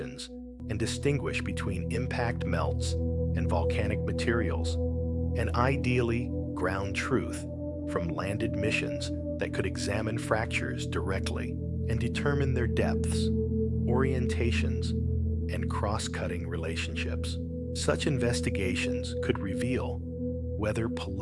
and distinguish between impact melts and volcanic materials, and ideally ground truth from landed missions that could examine fractures directly and determine their depths, orientations, and cross-cutting relationships. Such investigations could reveal whether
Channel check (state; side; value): identical; both; correlation 1.00